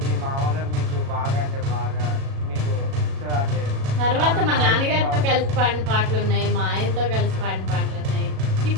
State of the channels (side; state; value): left; late; 37 ms